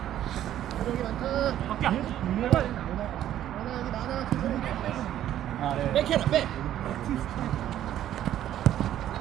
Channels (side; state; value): left; quieter; 11.8 dB